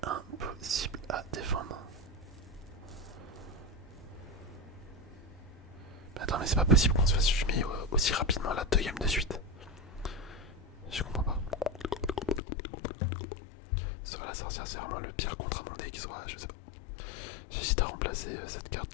impossible à défendre. Mais attends, mais c'est pas possible qu'on se fasse fumer aussi rapidement là 2 games de suite. Je comprends pas. Soit la sorcière, c'est vraiment le pire contre mon deck, soit je sais pas. J'hésite à remplacer cette carte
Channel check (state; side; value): drops out; right; at 12.4 s